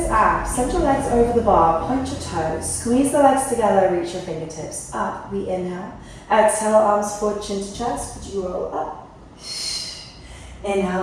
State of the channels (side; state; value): both; identical; correlation 1.00